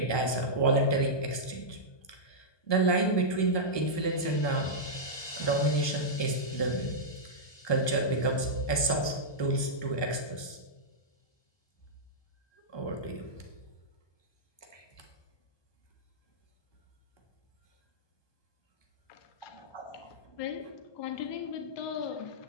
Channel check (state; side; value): late; right; 1.2 ms